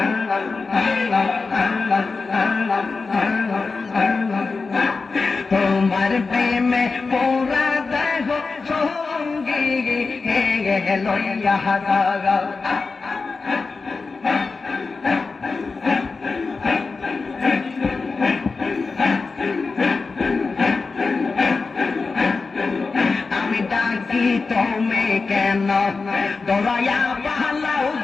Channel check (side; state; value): right; quieter; 4.2 dB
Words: তোমার প্রেমে পোরা দেহ সঙ্গী লইয়া হাজারা তুমি কেন দৌড়াইয়া পাহালাও